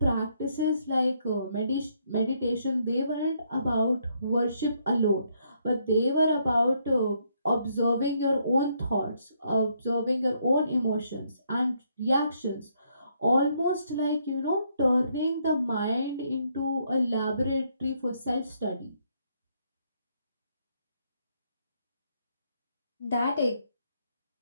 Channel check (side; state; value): both; inverted; correlation -0.73